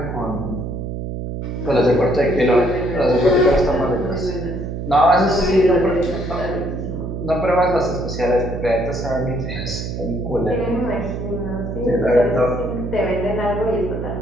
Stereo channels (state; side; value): noise; right; hum, 5 dB below the sound